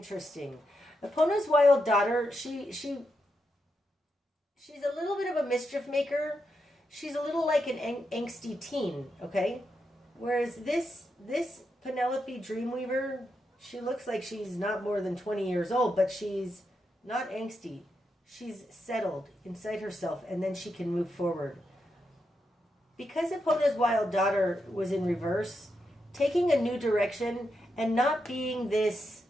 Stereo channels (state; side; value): normal; both; correlation 0.84